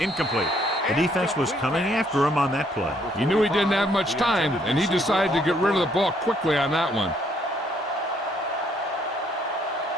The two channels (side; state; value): both; normal; correlation 0.68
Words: The defense was coming after him on that play. He knew he didn't have much time, and he decided to get rid of the ball quickly on that one.